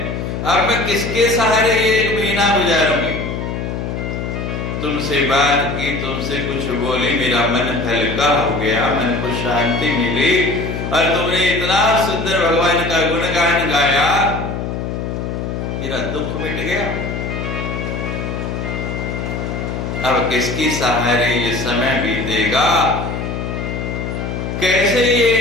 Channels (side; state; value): left; noise; hum, 4 dB below the sound